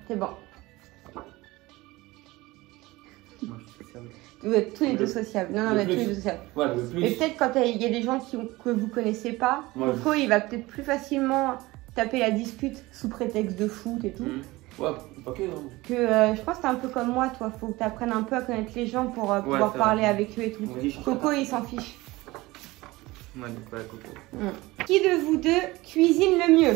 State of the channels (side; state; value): left; quieter; 20.3 dB